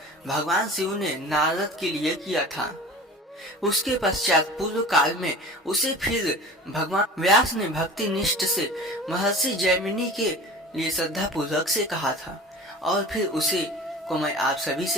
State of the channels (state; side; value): normal; both; correlation 0.39